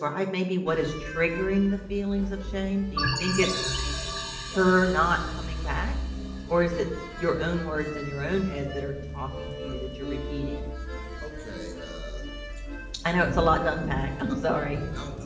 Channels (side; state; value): both; identical; correlation 1.00